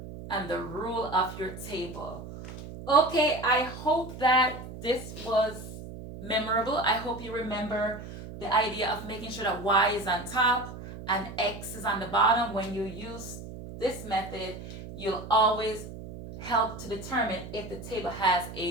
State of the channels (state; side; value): noise; right; hum, 12 dB below the sound